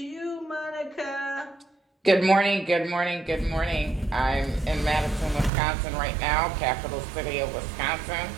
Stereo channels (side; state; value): left; drops out; at 5.5 s